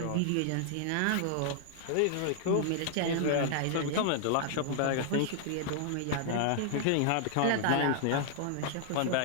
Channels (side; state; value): both; different; correlation 0.00